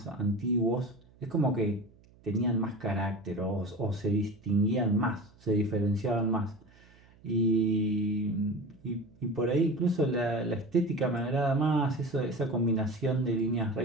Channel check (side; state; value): right; noise; hum, 27 dB below the sound